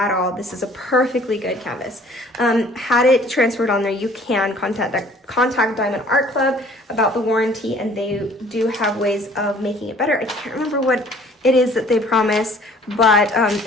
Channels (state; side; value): normal; both; correlation 0.54